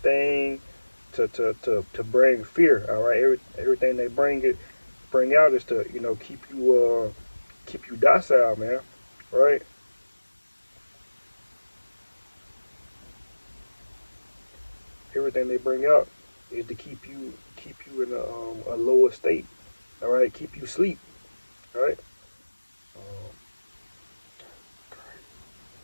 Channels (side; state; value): both; inverted; correlation -1.00